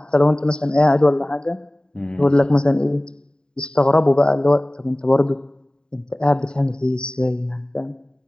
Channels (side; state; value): right; late; 0.048 ms